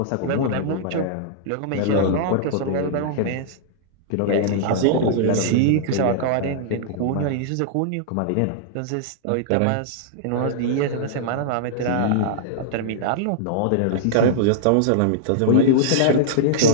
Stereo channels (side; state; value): both; different; correlation -0.01